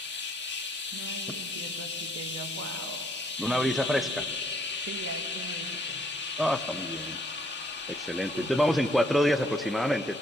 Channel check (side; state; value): both; normal; correlation 0.66